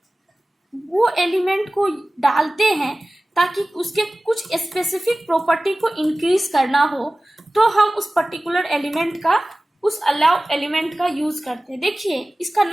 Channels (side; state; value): both; normal; correlation 0.97